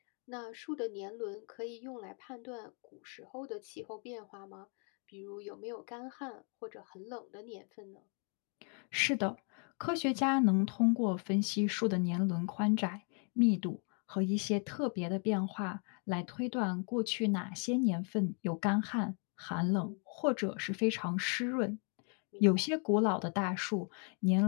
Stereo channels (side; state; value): right; quieter; 39.9 dB